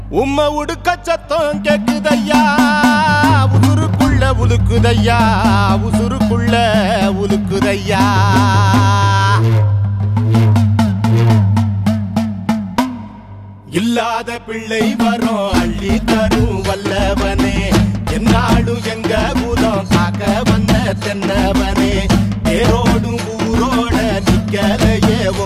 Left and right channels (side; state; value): both; identical; correlation 1.00